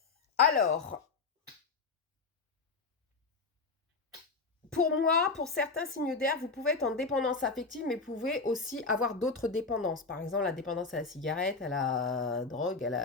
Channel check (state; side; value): quieter; right; 4.3 dB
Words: Alors, pour moi, pour certains signes d'air, vous pouvez être en dépendance affective, mais vous pouvez aussi avoir d'autres dépendances. Par exemple, la dépendance à la cigarette, à la drogue,